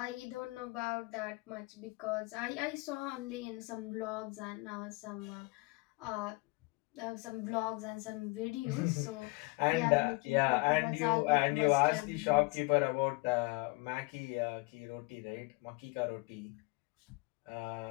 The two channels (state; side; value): quieter; right; 26.2 dB